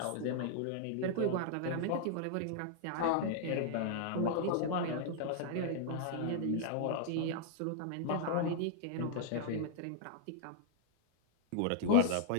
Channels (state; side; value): different; both; correlation 0.00